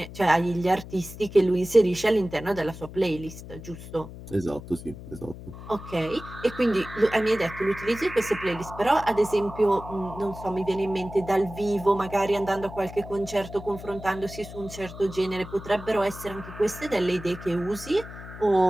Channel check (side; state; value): left; noise; hum, 14 dB below the sound